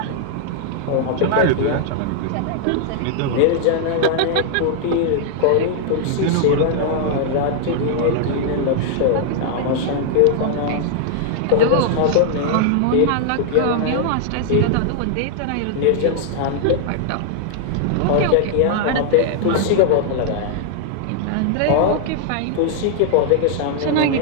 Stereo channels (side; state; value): both; different; correlation -0.01